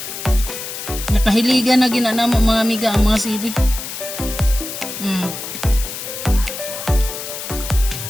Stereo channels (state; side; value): noise; left; hiss, 8 dB below the sound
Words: Nakahiligan na ginanamo mga amiga ang mga sili.